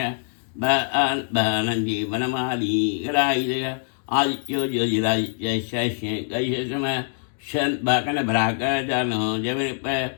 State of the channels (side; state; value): right; silent; digital silence